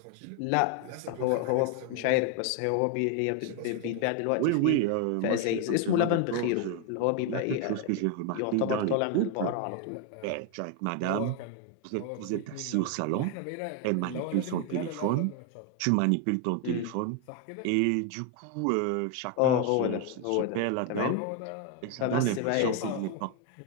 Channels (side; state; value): both; different; correlation 0.01